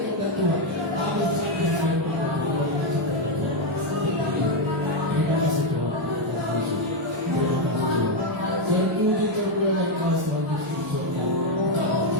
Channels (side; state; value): both; normal; correlation 0.04